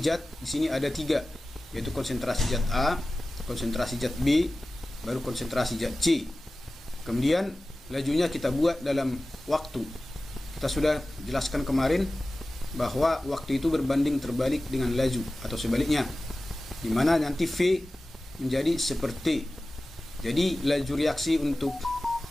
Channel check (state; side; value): normal; both; correlation 0.96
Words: zat di sini ada 3, yaitu konsentrasi zat A, konsentrasi zat B, baru konsentrasi zat C. Kemudian lajunya kita buat dalam waktu. Kita sudah jelaskan kemarin bahwa waktu itu berbanding terbalik dengan laju atau sebaliknya, di mana nanti V menjadi seperti. Jadi laju reaksi untuk